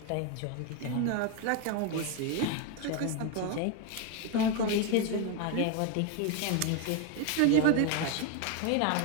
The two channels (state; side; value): different; both; correlation 0.02